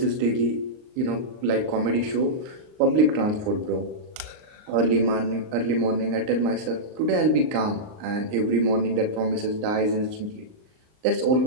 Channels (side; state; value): left; late; 38 ms